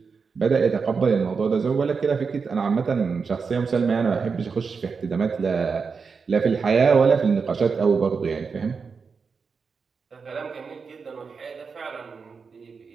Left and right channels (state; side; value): quieter; left; 5.3 dB